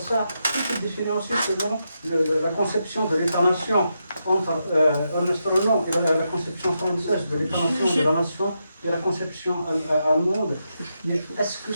tout est différencié selon la conception de l'État-nation entre Ernest Renan et la conception française de l'État-nation, de la nation et la conception allemande. Mais est-ce que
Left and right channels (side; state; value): both; inverted; correlation -0.84